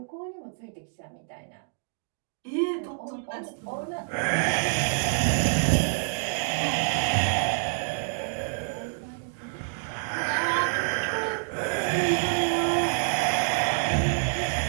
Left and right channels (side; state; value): left; silent; digital silence